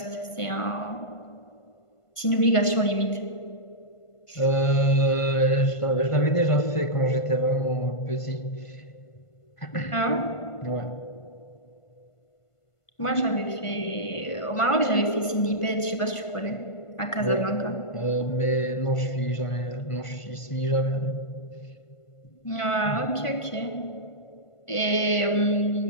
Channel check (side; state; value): right; late; 1.5 ms